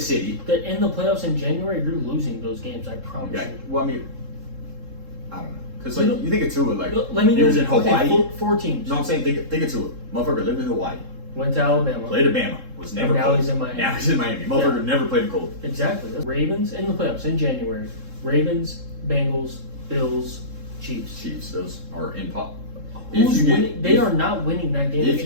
City. In the playoffs in January, you're losing those games, I promise you. Well, I mean, I don't know. Because like you think of Tua, like let me he know. was in Hawaii. Okay, four teams. No, I'm saying think of Tua. Motherfucker lived in Hawaii. Went to Alabama. Played at Bama. Was never. And now cold. he's in Miami. Now he's in Miami. Motherfucker never played cold. Exactly. Ravens in the playoffs in January. Ravens, Bengals, Bills, Chiefs. Chiefs. Those are in pop. Who's winning? They are not winning that game If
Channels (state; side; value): late; left; 3.7 ms